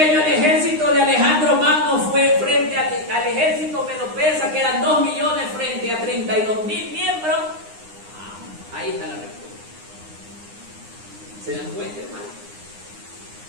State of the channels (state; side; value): late; left; 9.7 ms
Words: el ejército de Alejandro Magno fue frente al ejército medo-persa, que eran 2 millones frente a 32,000 miembros. Ahí está la respuesta. ¿Se dan cuenta, hermano?